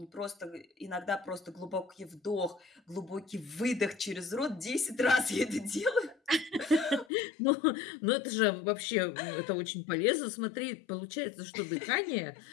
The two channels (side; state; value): right; drops out; at 7.1 s